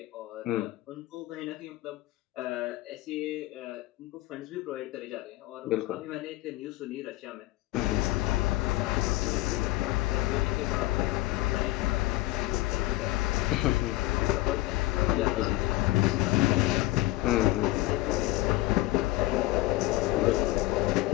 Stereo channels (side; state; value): right; quieter; 18.4 dB